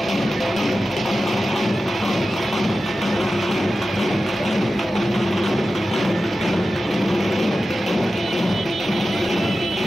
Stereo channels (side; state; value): both; normal; correlation 0.93